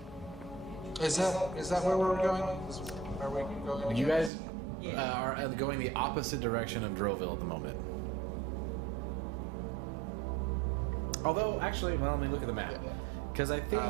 Is that where we're going? Are we going? You guys are going the opposite direction of Droville at the moment. Although, actually, well, let me look at the map. Because I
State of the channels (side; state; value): left; drops out; at 4.3 s